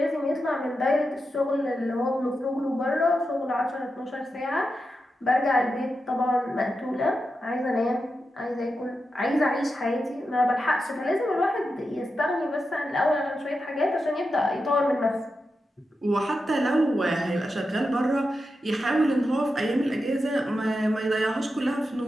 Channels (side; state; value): both; normal; correlation 0.89